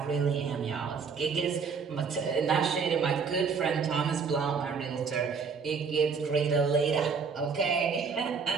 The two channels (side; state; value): left; quieter; 5.6 dB